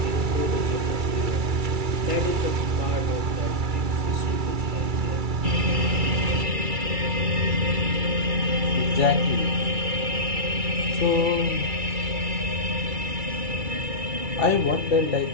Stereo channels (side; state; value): left; late; 2.3 ms